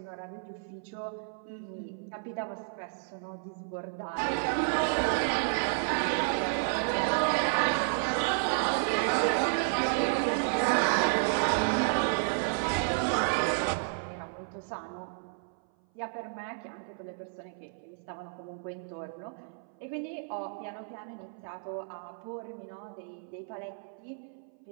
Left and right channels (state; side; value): silent; left; 57 dB below the other